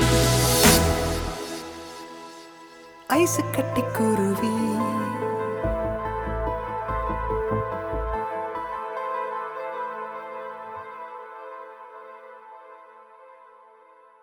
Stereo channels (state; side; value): identical; both; correlation 1.00